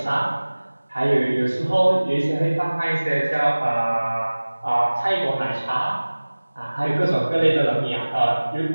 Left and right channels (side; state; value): both; inverted; correlation -1.00